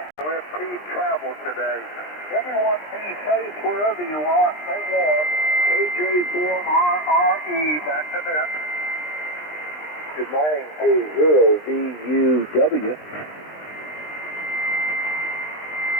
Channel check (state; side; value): late; right; 20 ms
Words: to impede travel today. Everyone be safe wherever you are. Stay warm. KJ4RRE, back to net. Good morning, K0VUW.